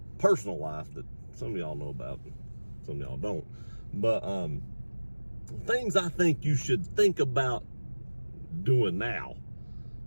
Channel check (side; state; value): both; inverted; correlation -1.00